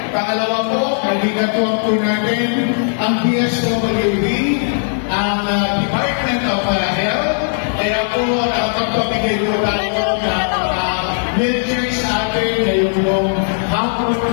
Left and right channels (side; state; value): right; silent; digital silence